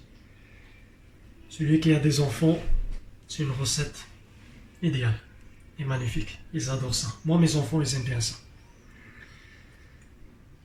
Celui qui a des enfants, c'est une recette idéale et magnifique. Ils adorent ça. Moi, mes enfants, ils aiment bien ça.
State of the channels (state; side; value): identical; both; correlation 1.00